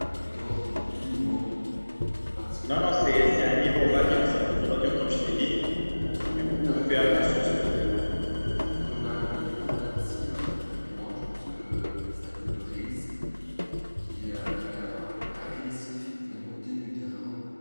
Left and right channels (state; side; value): inverted; both; correlation -1.00